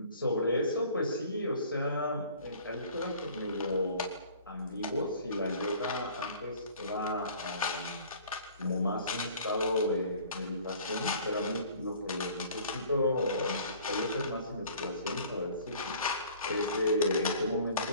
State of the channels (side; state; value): both; inverted; correlation -0.50